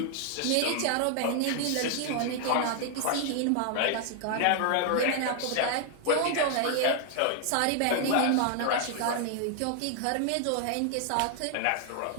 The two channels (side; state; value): both; different; correlation 0.00